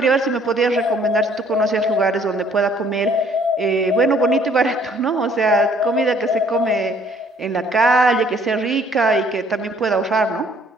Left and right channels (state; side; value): normal; both; correlation 0.61